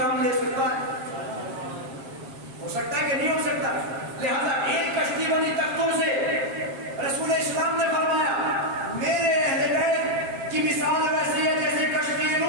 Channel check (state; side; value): late; left; 7.4 ms